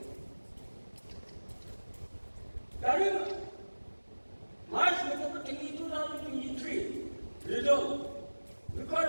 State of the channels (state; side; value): inverted; both; correlation -1.00